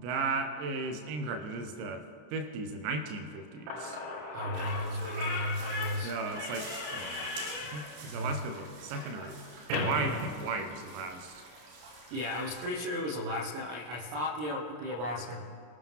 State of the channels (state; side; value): late; left; 33 ms